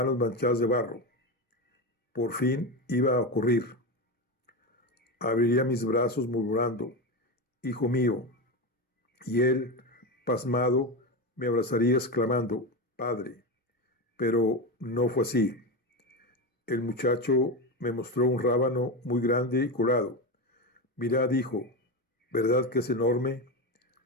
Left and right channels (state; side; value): normal; both; correlation 0.17